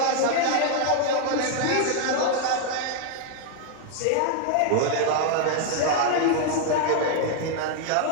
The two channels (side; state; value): both; different; correlation 0.00